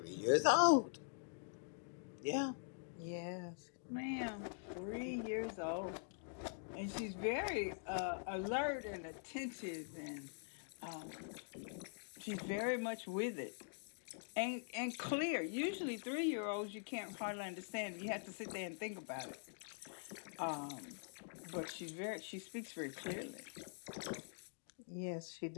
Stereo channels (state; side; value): silent; right; digital silence